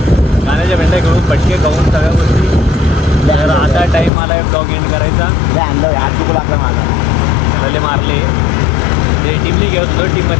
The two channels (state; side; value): drops out; right; at 4.1 s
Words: गाण्याच्या भेंड्या घेऊन पटके खाऊन सगळ्या गोष्टी. तर आता टाईम आला आहे ब्लॉग एंड करायचा. त्याला मारले ते टीमने घेत होतं.